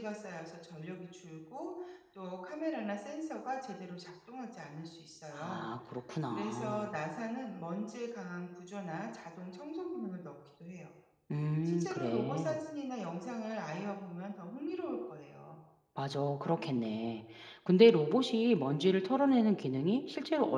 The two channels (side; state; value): both; identical; correlation 1.00